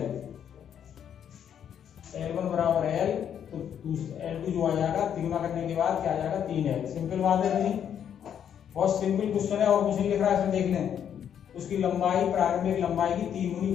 L1 बराबर L, तो L2 जो आ जाएगा 3 गुना करने के बाद क्या आ जाएगा 3L। सिंपल बात है नहीं, बहुत सिंपल क्वेश्चन है और कुछ नहीं लिख रहा है, इसमें देख लें। उसकी लंबाई प्रारंभिक लंबाई की 3 गुनी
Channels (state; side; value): quieter; right; 8.9 dB